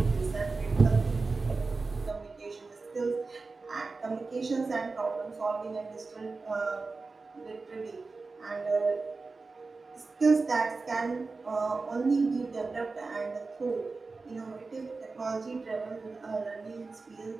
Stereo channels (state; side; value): quieter; left; 3.9 dB